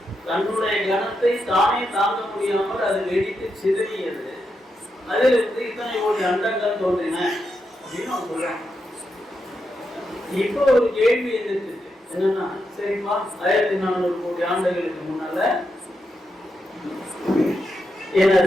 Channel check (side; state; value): both; normal; correlation 0.84